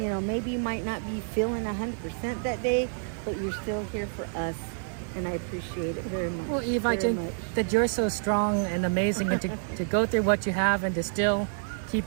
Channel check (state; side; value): silent; left; 59 dB below the other